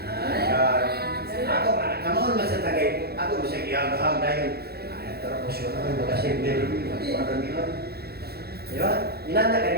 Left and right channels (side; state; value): left; late; 0.46 ms